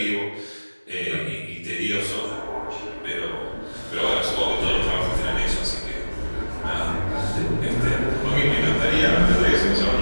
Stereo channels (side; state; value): both; inverted; correlation -1.00